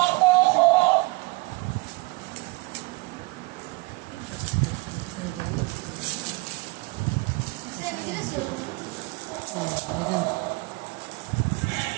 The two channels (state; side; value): quieter; left; 24.2 dB